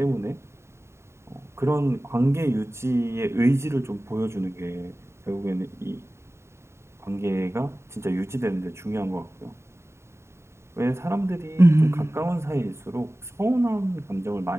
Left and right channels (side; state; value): left; late; 0.13 ms